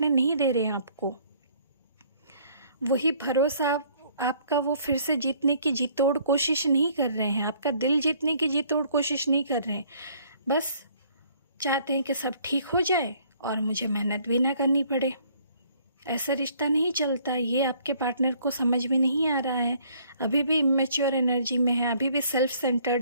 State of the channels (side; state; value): both; inverted; correlation -0.61